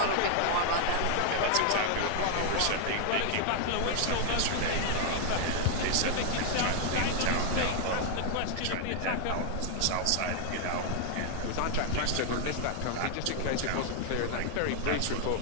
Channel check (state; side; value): different; both; correlation 0.00